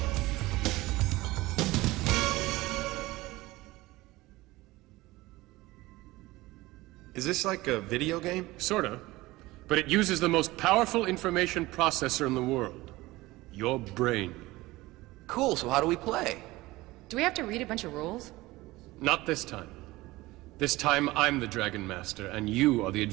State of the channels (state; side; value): quieter; left; 19.4 dB